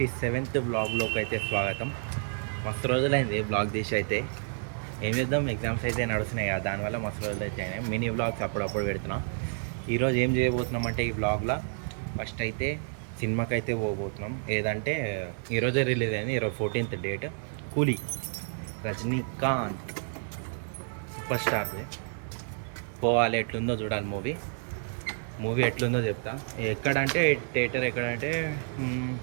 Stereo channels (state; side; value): silent; left; digital silence